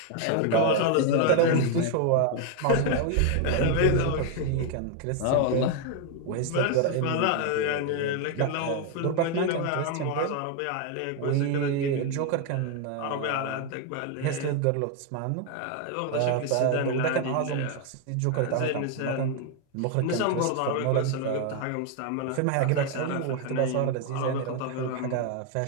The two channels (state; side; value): different; both; correlation 0.01